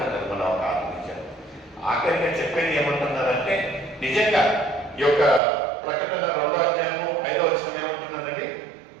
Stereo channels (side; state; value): left; drops out; at 5.4 s